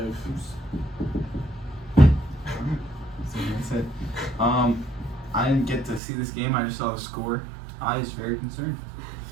That's it. I didn't get to see this game. I just saw the score. I was very concerned.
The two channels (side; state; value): left; drops out; at 6.0 s